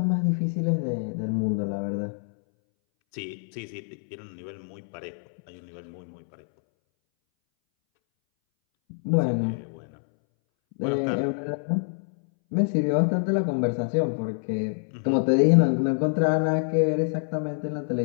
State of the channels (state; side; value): silent; right; 61 dB below the other